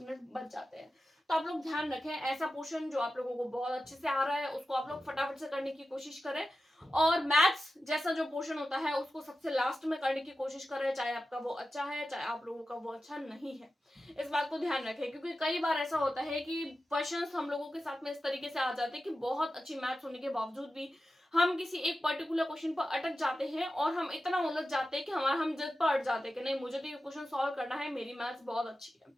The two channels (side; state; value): both; normal; correlation 0.93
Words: मिनट बच जाते हैं। तो आप लोग ध्यान रखें, ऐसा पोर्शन जो आप लोगों को बहुत अच्छे से आ रहा है उसको आप लोग फटाफट से करने की कोशिश करें, और मैथ्स जैसा जो पोर्शन होता है उसको सबसे लास्ट में करने की कोशिश करें, चाहे आपका वो अच्छा है चाहे आप लोगों का वो अच्छा नहीं है। इस बात को ध्यान रखें, क्योंकि कई बार ऐसा होता है कि क्वेश्चंस हम लोगों के साथ में इस तरीके से आ जाते हैं कि बहुत अच्छी मैथ्स होने के बावजूद भी हम किसी एक पर्टिकुलर क्वेश्चन पर अटक जाते हैं और हम इतना उलझ जाते हैं कि हम जिद पर अट जाते हैं कि नहीं, मुझे तो ये क्वेश्चन सॉल्व करना है, मेरी मैथ्स बहुत अच्छी है।